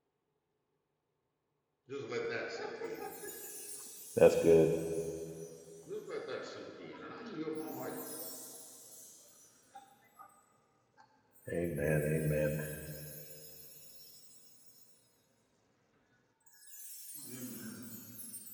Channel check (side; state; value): both; identical; correlation 1.00